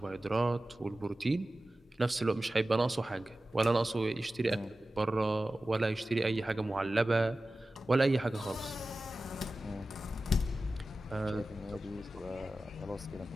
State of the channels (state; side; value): normal; both; correlation 0.95